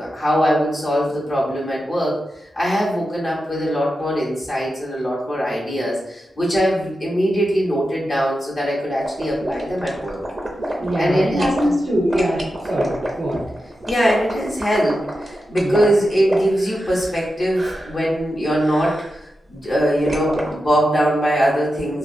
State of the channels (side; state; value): both; normal; correlation 0.90